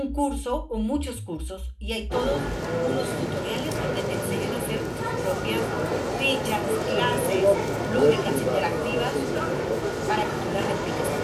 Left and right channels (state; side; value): identical; both; correlation 1.00